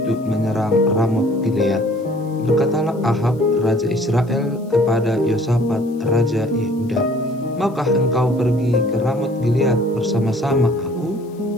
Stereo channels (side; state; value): left; noise; hiss, 30 dB below the sound